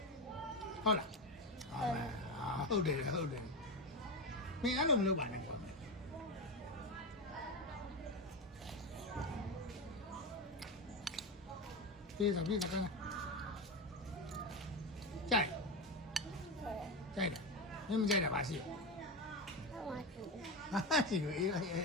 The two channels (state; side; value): normal; both; correlation 0.16